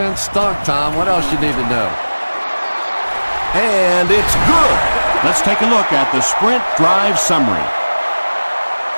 stunk, Tom. What else you need to know? And it's good. Let's take a look at the sprint drive summary.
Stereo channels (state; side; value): inverted; both; correlation -1.00